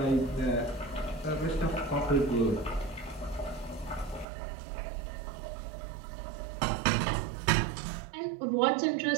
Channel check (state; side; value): drops out; left; at 4.2 s